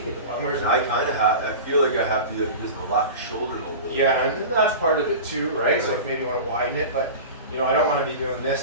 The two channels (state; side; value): inverted; both; correlation -0.32